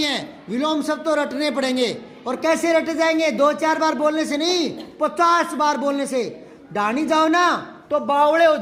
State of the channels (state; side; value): identical; both; correlation 1.00